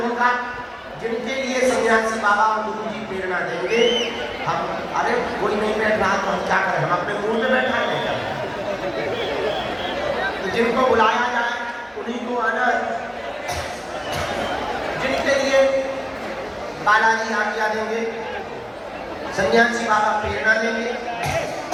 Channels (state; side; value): identical; both; correlation 1.00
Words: होगा। जिनके लिए सन्यासी बाबा और गुरु जी प्रेरणा देंगे, हम अरे कोई नहीं बैठ रहा तो हम क्या करें, हम अपने मुंह में बैठा नहीं कर, तो जिनको बुलाया जाए उन्हीं को आना है। जिनके लिए बालाजी आज्ञा देंगे, सन्यासी बाबा प्रेरणा देंगे,